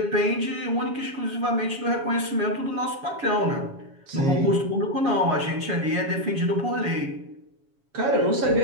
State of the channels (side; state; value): left; late; 7.2 ms